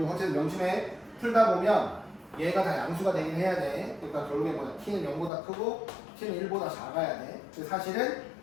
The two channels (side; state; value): right; drops out; at 5.3 s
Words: 어쨌든 명심해. 풀다 보면 얘가 다 양수가 되긴 해야 돼. 그러니까 결국에 뭐야? t는 0보다 크고 t는 1보다 작아야 돼. 사실은